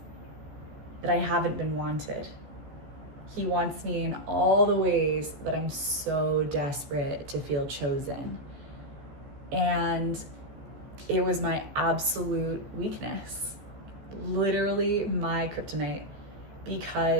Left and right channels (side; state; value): left; late; 14 ms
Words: that I haven't been wanted. He wants me in all the ways that I'm so desperate to feel chosen. And it was my absolute weakness, literally my kryptonite,